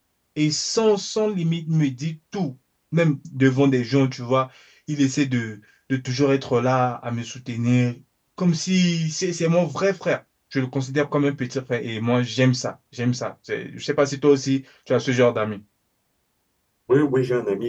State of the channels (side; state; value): both; identical; correlation 1.00